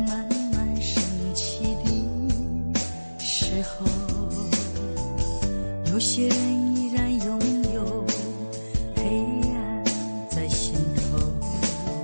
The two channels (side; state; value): both; inverted; correlation -1.00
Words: 有些人依然拥有黑暗在心头，